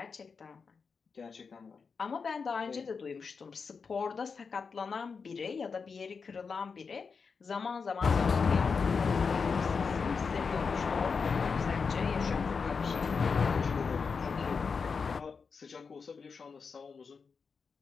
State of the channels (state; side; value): quieter; right; 5.3 dB